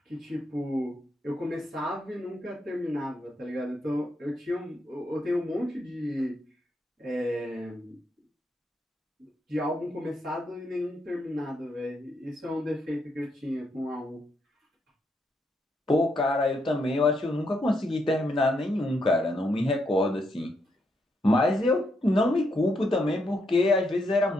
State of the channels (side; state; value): both; normal; correlation 0.78